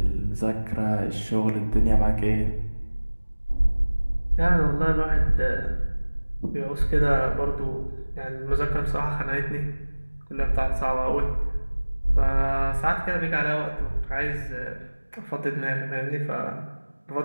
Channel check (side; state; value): both; inverted; correlation -1.00